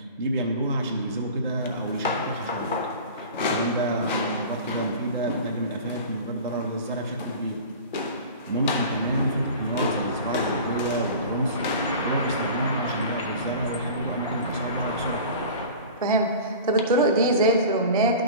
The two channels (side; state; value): both; inverted; correlation -0.37